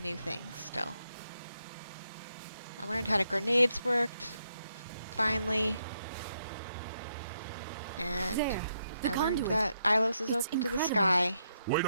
new things still. I learned how the grenades worked, finally. And There, the I learned conduit. that Ilos is It's open to the incredible. sky. We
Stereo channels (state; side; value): inverted; both; correlation -0.79